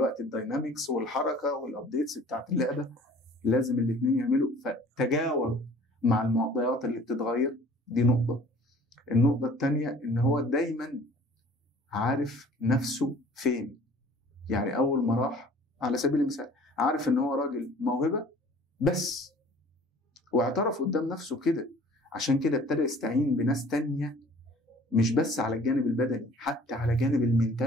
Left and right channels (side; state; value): both; normal; correlation 0.50